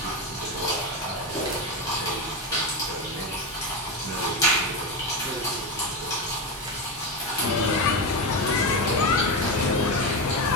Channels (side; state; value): both; normal; correlation 0.14